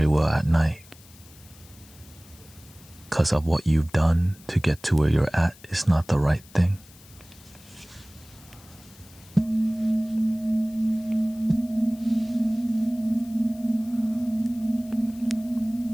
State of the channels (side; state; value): left; noise; hiss, 24 dB below the sound